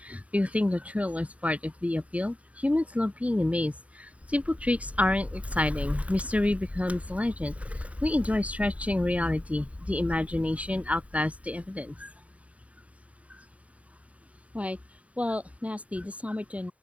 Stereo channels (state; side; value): late; left; 0.067 ms